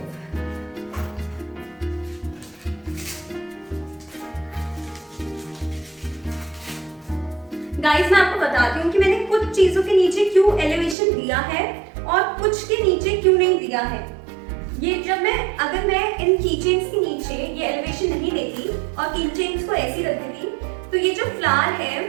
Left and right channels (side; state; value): left; drops out; at 11.0 s